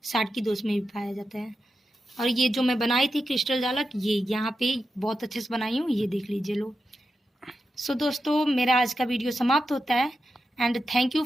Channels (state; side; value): normal; both; correlation 0.89